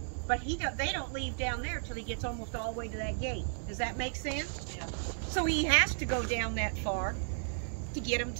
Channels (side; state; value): left; silent; digital silence